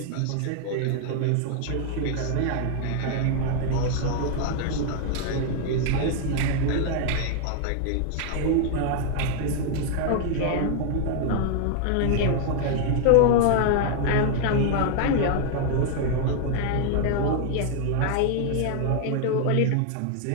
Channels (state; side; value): different; both; correlation 0.00